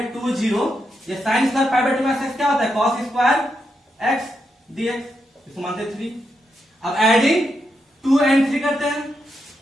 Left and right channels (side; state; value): both; normal; correlation 0.83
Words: 2 0, ये sine square pi by 2 minus x क्या होता है कॉस स्क्वायर एक्स डीएक्स, इसको मानते हैं 3। अब एडिंग 2 एंड 3 करते हैं,